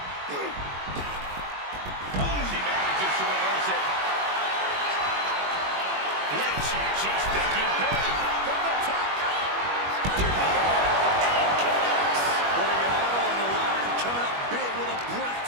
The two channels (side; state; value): left; late; 21 ms